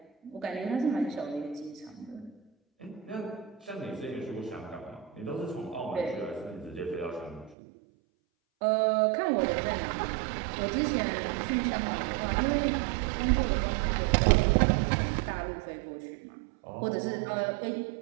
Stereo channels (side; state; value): left; drops out; at 7.6 s